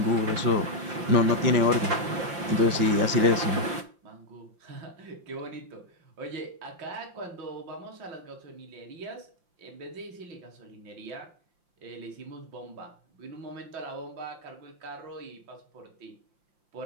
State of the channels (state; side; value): late; left; 5.7 ms